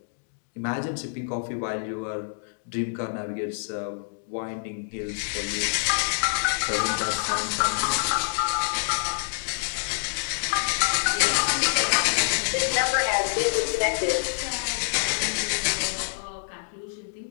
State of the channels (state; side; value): silent; right; digital silence